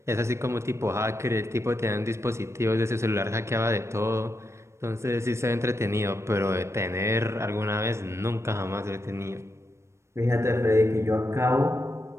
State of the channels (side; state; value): left; late; 0.13 ms